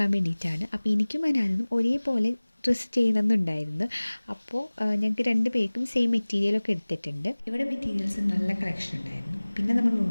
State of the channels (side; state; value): both; inverted; correlation -1.00